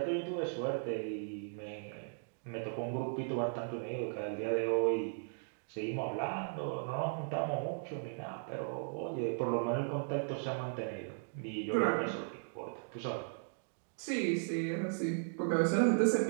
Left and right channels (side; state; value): left; silent; digital silence